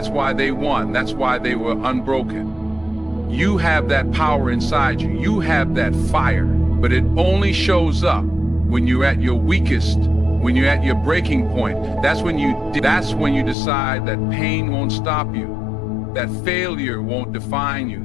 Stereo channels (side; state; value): right; drops out; at 13.6 s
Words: why they won. That's why they were unbroken. You have that power inside you. You have that fire, but it only shows up when you're at your weakest, when you're at your breaking point. That's when you decide that pain won't stop you, that failure won't define